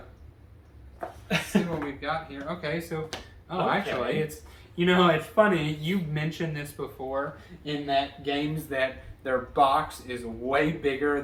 Let's see what we've got here. Okay, so actually, it's it's funny. You mentioned this before in that games that their box is way bigger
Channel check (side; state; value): both; identical; correlation 1.00